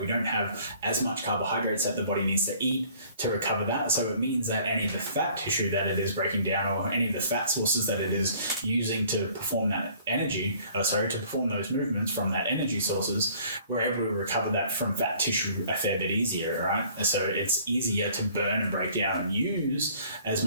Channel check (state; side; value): inverted; both; correlation -0.55